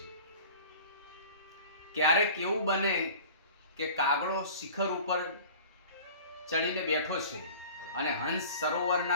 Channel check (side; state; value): both; inverted; correlation -0.42